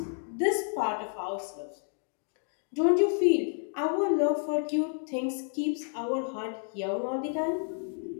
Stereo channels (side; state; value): right; silent; 56 dB below the other